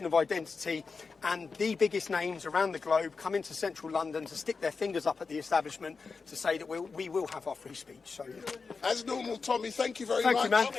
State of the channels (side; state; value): right; quieter; 4.7 dB